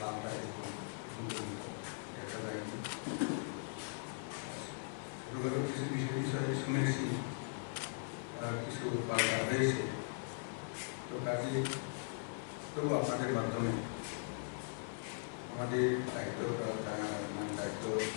দেখা যায়নি। কিছু বিষয়ে শুনেছি কিছু পাল্টা হয়েছে। তো কাজে তবু আপনাদের মাধ্যমে আমাদের দায়িত্ব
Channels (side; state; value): right; silent; 51 dB below the other